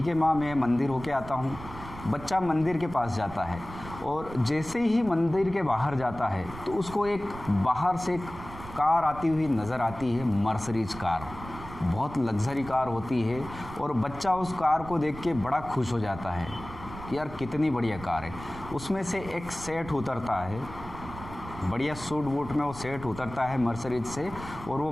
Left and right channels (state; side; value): noise; right; rumble, 13 dB below the sound